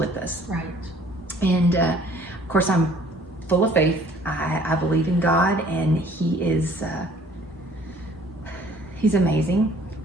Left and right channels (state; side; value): normal; both; correlation 0.55